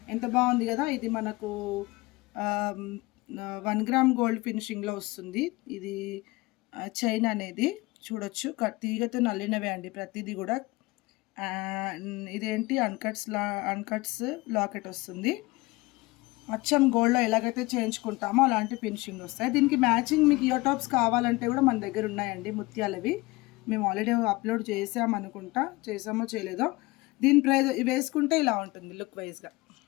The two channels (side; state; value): right; quieter; 22.1 dB